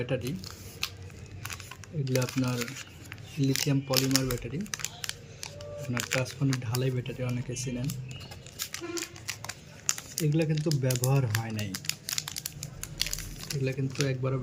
এগুলো আপনার লিথিয়াম পলিমার ব্যাটারি, আপনার ট্রান্সফর্মার ঢালাই ব্যাটারি অনেকে চেনেন। এগুলো কিন্তু ব্যবহার হয় নাই, এগুলো কিন্তু একবারও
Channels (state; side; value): identical; both; correlation 1.00